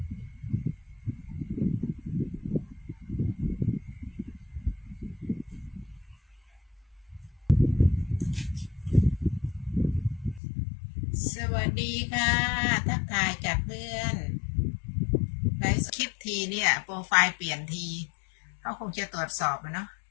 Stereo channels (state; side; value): drops out; right; at 10.4 s